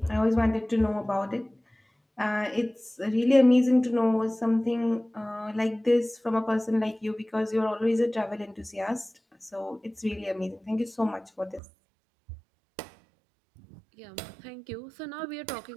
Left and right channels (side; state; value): left; drops out; at 11.6 s